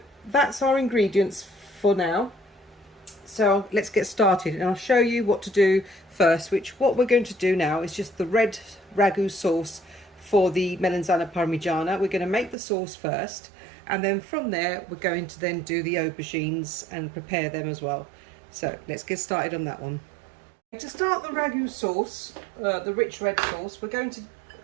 that's our ingredients for now. So let's get started, and I'll show you what to do first, what we're going to do now is just the red ragu sauce for the Melanzane Parmigiana. We're going to make the sauce first, and then from there we're going to then do the aubergines and prepare them as well. So let's get started on that one. To start the ragu sauce, the rich red sauce, we're going to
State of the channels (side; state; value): left; drops out; at 12.6 s